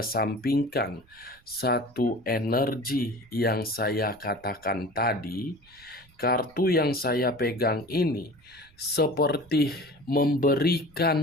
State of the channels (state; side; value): noise; right; rumble, 29 dB below the sound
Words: satu energi yang saya katakan tadi, kartu yang saya pegang ini seperti